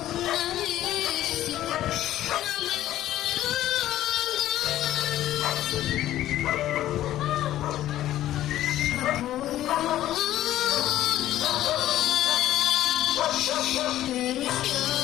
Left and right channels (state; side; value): quieter; right; 13.4 dB